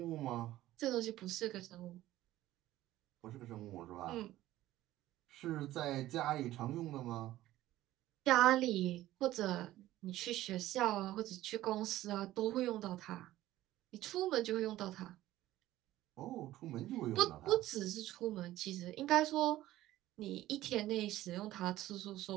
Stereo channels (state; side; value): quieter; left; 15.1 dB